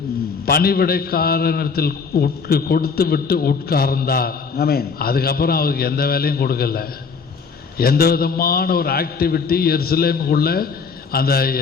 பணிவிடைக்காரனிடத்தில் கொடுத்து விட்டு உட்கார்ந்தார். அதுக்கப்புறம் அவருக்கு எந்த வேலையும் கொடுக்கல. எந்த விதமான ஒரு ஆக்டிவிட்டி எருசலேமுக்குள்ள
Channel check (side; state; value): right; quieter; 5.4 dB